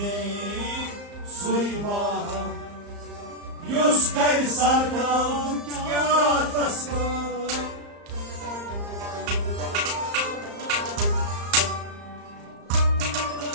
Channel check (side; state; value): left; late; 34 ms